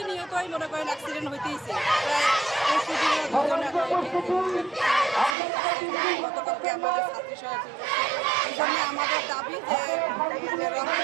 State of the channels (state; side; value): drops out; left; at 5.4 s